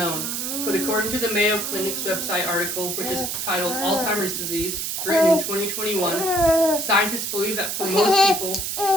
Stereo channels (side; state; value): right; noise; hiss, 3 dB below the sound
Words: but according to the Mayo Clinic's website article, which is titled Alzheimer's Disease, written in 2021, scientists believe that for most people,